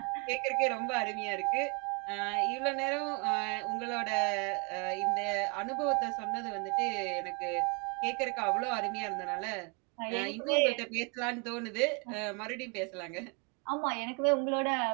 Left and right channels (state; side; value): quieter; left; 33.9 dB